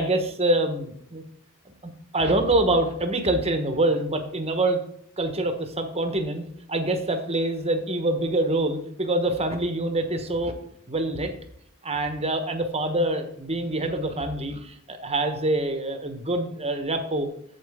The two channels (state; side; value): normal; both; correlation 0.23